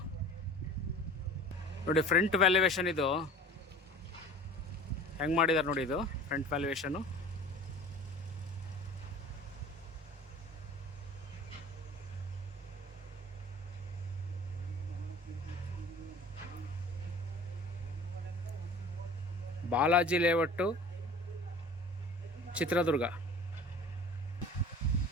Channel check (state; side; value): normal; both; correlation 0.42